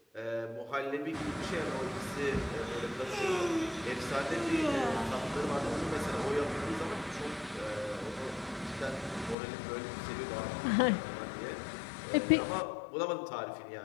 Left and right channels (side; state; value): right; drops out; at 9.3 s